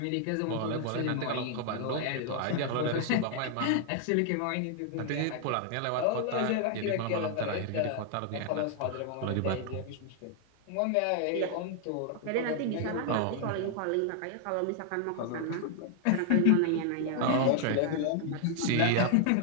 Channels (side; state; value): both; different; correlation 0.00